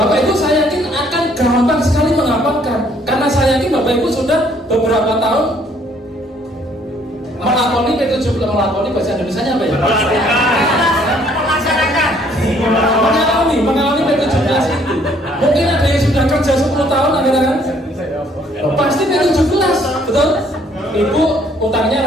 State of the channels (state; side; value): normal; both; correlation 0.63